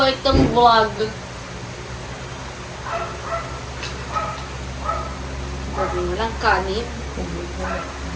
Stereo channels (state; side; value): identical; both; correlation 1.00